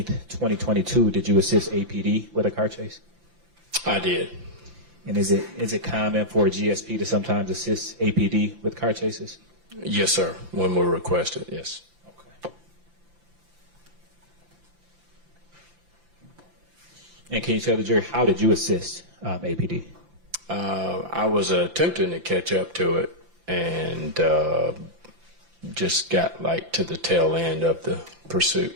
2022, did you assist APD with a car chase? I did. And is it common for a GSP to sometimes assist APD with car chases? Yes, sir. When we're requested, yes. Okay. And can you tell the jury, how did you assist APD? I was attempting to catch up to it and just got to the tail end of the pursuit.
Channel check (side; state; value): left; late; 5.9 ms